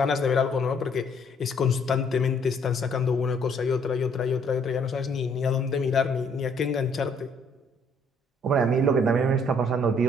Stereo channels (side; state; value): both; normal; correlation 0.64